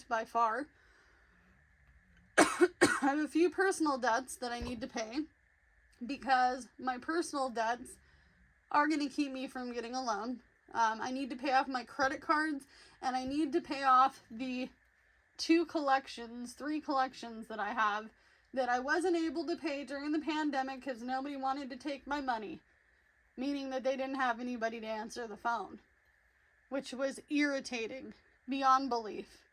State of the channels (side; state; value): both; identical; correlation 1.00